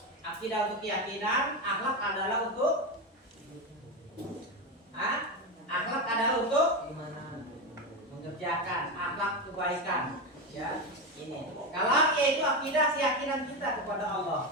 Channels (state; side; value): normal; both; correlation 0.15